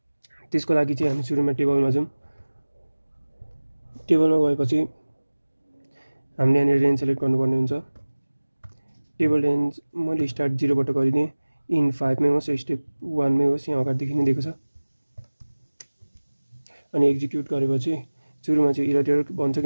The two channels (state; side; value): inverted; both; correlation -1.00